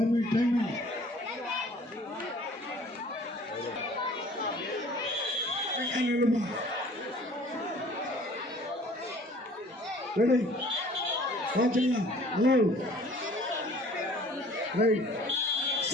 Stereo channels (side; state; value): both; normal; correlation 0.51